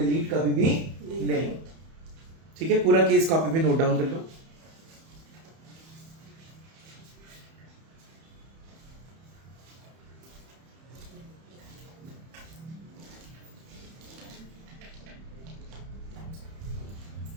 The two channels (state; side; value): late; left; 31 ms